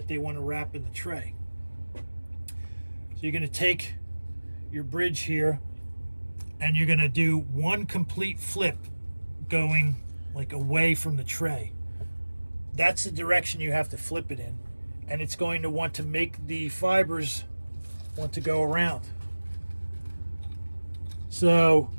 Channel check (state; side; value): inverted; both; correlation -1.00